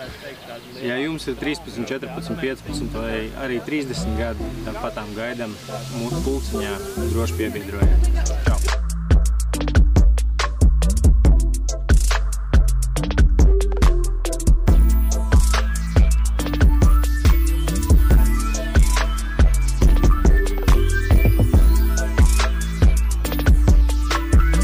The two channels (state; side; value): identical; both; correlation 1.00